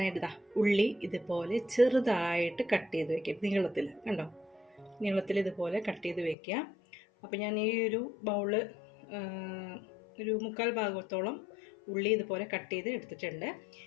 ഉള്ളി ഇതുപോലെ ചെറുതായിട്ട് കട്ട് ചെയ്ത് വെക്കുക. നീളത്തിൽ കണ്ടോ, നീളത്തിൽ ഇതുപോലെ കട്ട് ചെയ്ത് വെക്കുക. അപ്പോൾ ഞാൻ ഈ ഒരു ബൗള് ഒരു 1/4 ഭാഗത്തോളം ഉള്ളി ഇതുപോലെ കട്ട് ചെയ്ത് എടുത്തിട്ടുണ്ട്.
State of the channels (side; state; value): right; drops out; at 6.4 s